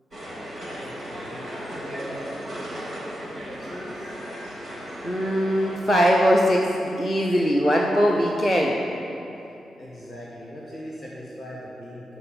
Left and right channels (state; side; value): normal; both; correlation 0.88